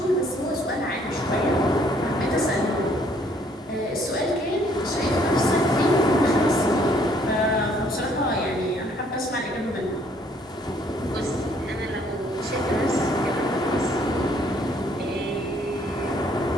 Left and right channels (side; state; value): both; normal; correlation 0.64